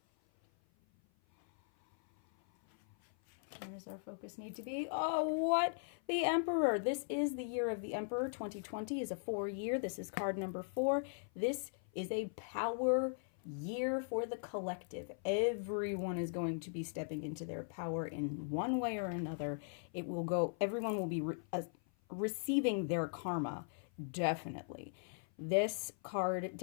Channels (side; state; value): right; silent; 52 dB below the other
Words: Where does our focus need to be? Oh, what? The Emperor. This is the year of the Emperor. 2020 is a 4-year. This is card number 4. This is a power year for the collective. Everyone is going to be stepping into their power in one way or another. Everyone will be receiving their karma, definitely. This card